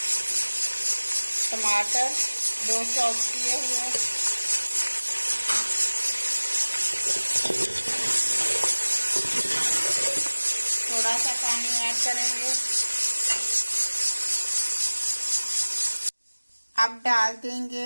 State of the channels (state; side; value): inverted; both; correlation -1.00